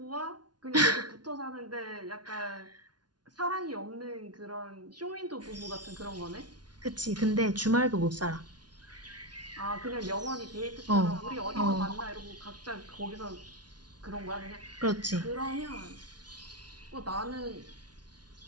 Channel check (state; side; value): late; left; 0.69 ms